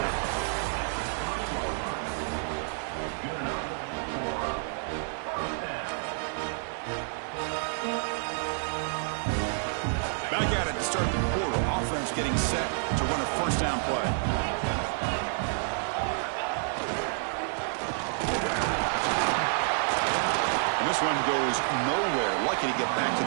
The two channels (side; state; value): left; silent; 58 dB below the other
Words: Back at it to start the quarter. Offense getting set to run a first down play. And this one goes nowhere. Lucky to get back to